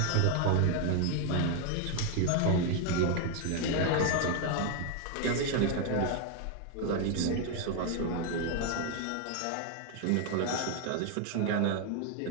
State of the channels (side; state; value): both; different; correlation 0.01